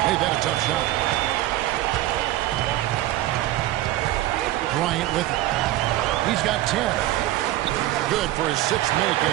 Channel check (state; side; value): quieter; left; 15.3 dB